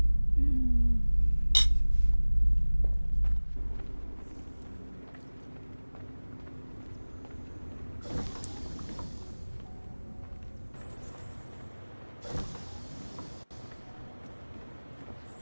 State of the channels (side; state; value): both; inverted; correlation -1.00